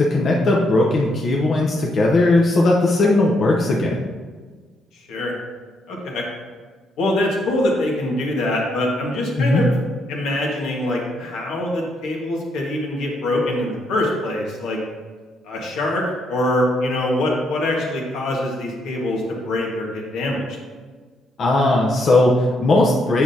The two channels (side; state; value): both; normal; correlation 0.77